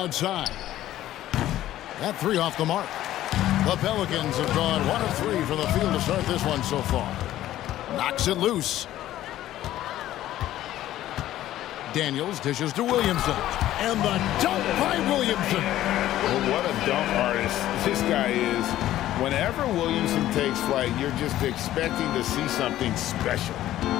That 3 off the mark. The Pelicans have gone 1 of 3 from the field to start this one so far. Knocks it loose. Daniels dishes to Williamson. And the dunk by Williamson. Well, what a dunk artist this guy is. Whenever Williamson takes flight, you're just expecting to see something special.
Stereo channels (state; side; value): quieter; right; 13.6 dB